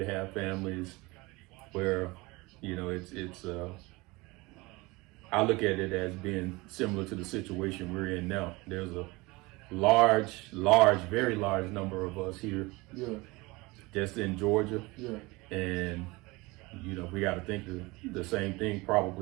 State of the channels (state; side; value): quieter; left; 23.3 dB